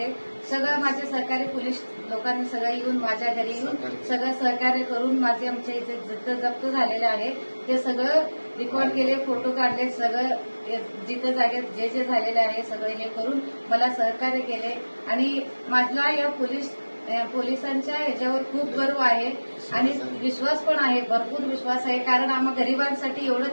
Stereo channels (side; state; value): both; inverted; correlation -1.00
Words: सगळं माझे सहकारी पोलीस लोकांनी सगळं येऊन माझ्या घरी येऊन सगळं सहकार्य करून माझे आमच्या इथे जिथं जप्त झालेले आहे ते सगळं रेकॉर्ड केले, फोटो काढले, सगळं जिथं जागेत जे जे झालेले आहे सगळं हे करून मला सहकार्य केले. आणि माझा या पोलिसांच्या ह्याच्यावर खूप गर्व आहे आणि विश्वास पण आहे, भरपूर विश्वास आहे. कारण आम्हा गरिबांसाठी